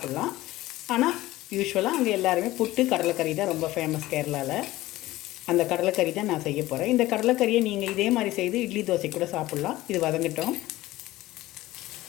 ஆனால் யூஸ்வலாக அங்கே எல்லாருமே புட்டு, கடலைக்கறி தான் ரொம்ப ஃபேமஸ் கேரளாவில். அந்த கடலைக்கறி தான் நான் செய்ய போகிறேன். இந்த கடலைக்கறியை நீங்கள் இதே மாதிரி செய்து இட்லி தோசை கூட சாப்பிட்லாம். இது வதங்கட்டும்.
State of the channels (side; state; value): right; quieter; 17.1 dB